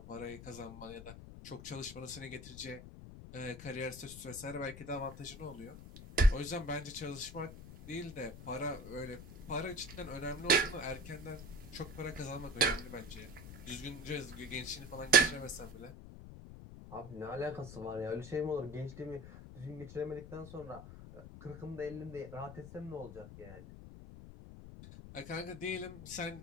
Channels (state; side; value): noise; left; rumble, 13 dB below the sound